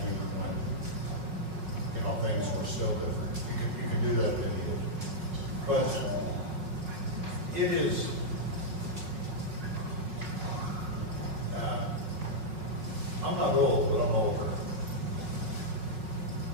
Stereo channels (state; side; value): late; left; 5.4 ms